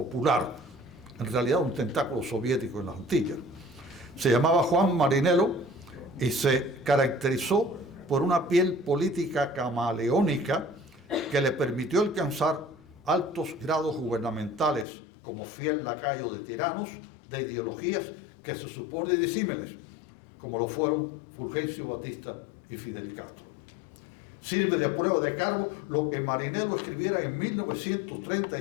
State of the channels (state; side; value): drops out; right; at 14.9 s